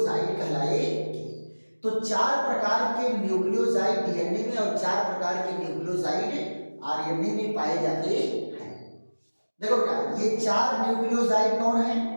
कहलाएगी। तो 4 प्रकार के न्यूक्लियोसाइड डीएनए में और 4 प्रकार के न्यूक्लियोसाइड आरएनए में पाए जाते हैं। देखो बेटा, ये 4 न्यूक्लियोसाइड कौन है?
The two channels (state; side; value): inverted; both; correlation -1.00